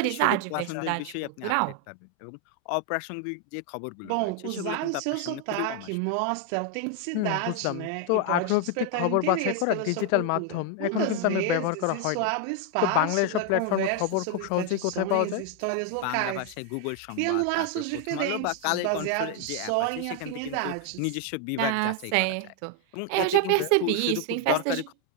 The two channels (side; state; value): both; different; correlation 0.00